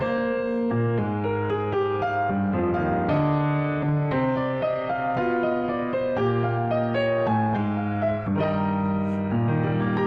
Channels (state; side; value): identical; both; correlation 1.00